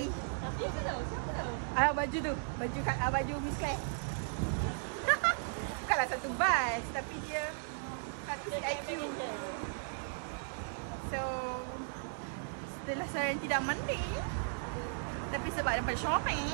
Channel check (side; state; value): left; silent; digital silence